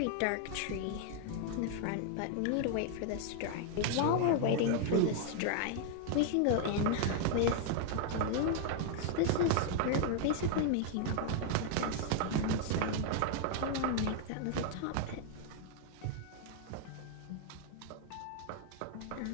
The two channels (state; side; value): different; both; correlation 0.00